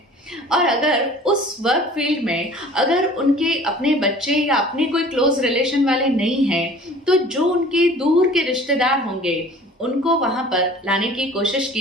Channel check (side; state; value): both; normal; correlation 0.47